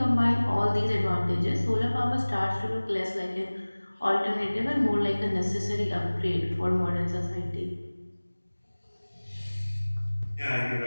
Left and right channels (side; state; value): both; inverted; correlation -1.00